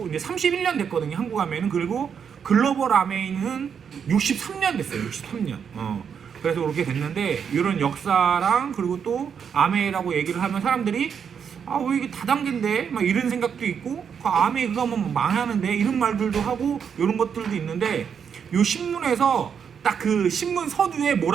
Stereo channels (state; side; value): quieter; left; 7.2 dB